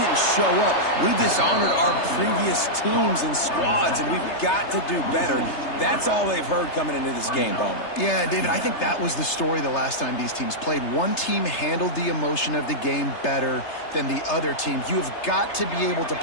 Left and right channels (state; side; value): late; right; 3.3 ms